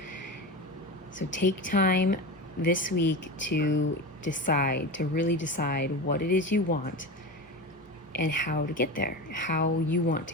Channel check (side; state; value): both; normal; correlation 0.25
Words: So take time this week to decide, to really decide what it is you want and how to get there, how you want to